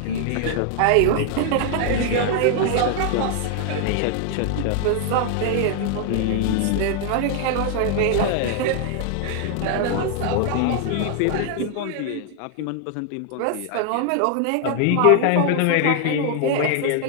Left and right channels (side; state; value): both; different; correlation 0.00